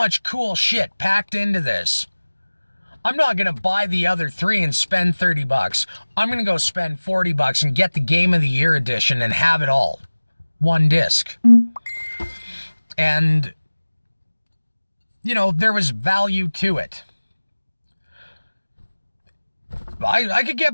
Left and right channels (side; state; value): both; inverted; correlation -1.00